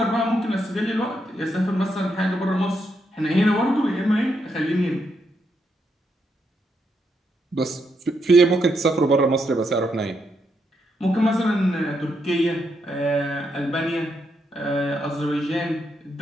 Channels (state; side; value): normal; both; correlation 0.80